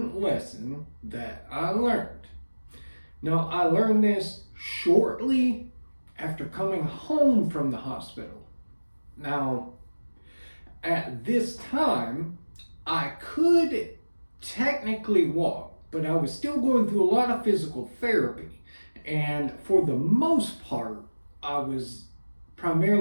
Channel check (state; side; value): inverted; both; correlation -1.00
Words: lesson that I learned. Now, I learned this shortly after coming home from the hospital. Now, at this time, I could technically walk, but I was still going through a lot of physical therapy. And for the most part, I was